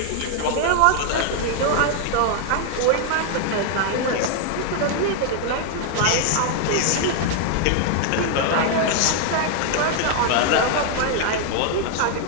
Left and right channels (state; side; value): different; both; correlation 0.00